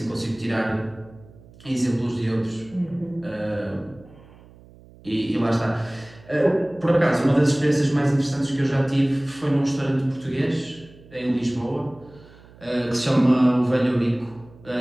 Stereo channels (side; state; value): right; noise; hum, 23 dB below the sound